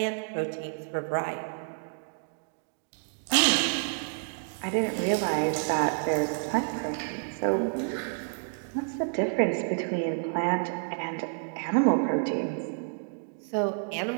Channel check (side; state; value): left; silent; digital silence